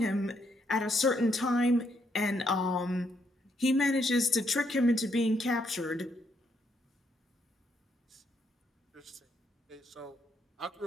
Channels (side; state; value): both; normal; correlation 0.75